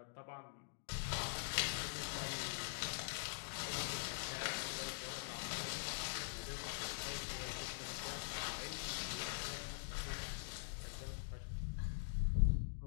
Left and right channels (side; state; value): right; silent; digital silence